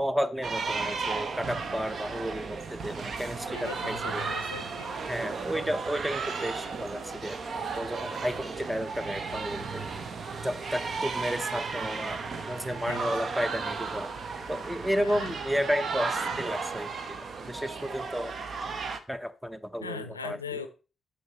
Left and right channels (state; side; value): normal; both; correlation 0.88